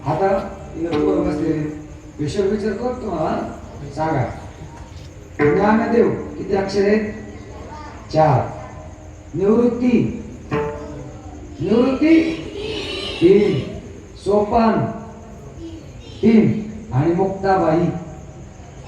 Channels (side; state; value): both; identical; correlation 1.00